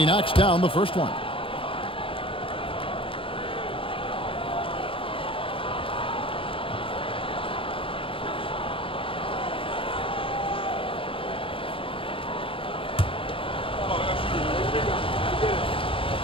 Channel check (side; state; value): right; late; 0.26 ms